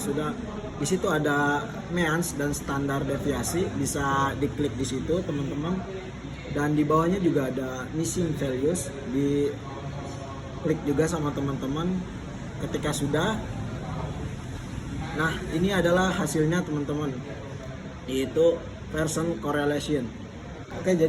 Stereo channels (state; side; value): identical; both; correlation 1.00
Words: di situ ada means dan standar deviasi, bisa diklik di situ teman-teman, dan di bawahnya juga ada missing values, di klik juga sama teman-teman. Ketika sudah, nah ini adalah hasilnya teman-teman, yaitu person correlation. Oke,